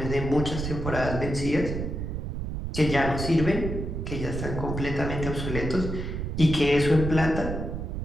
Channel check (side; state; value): right; noise; rumble, 4 dB below the sound